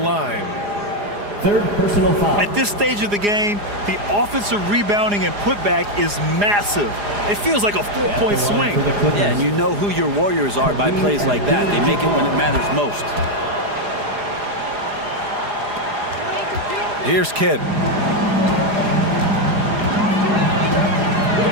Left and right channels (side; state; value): left; late; 4.9 ms